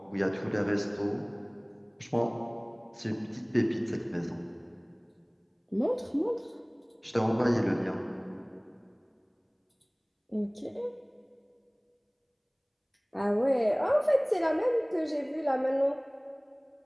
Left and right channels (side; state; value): both; identical; correlation 1.00